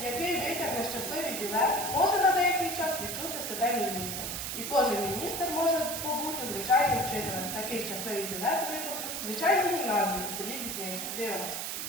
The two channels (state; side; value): noise; right; hiss, 4 dB below the sound